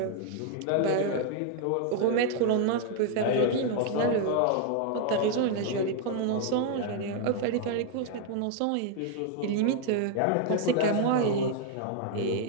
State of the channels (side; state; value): both; different; correlation 0.00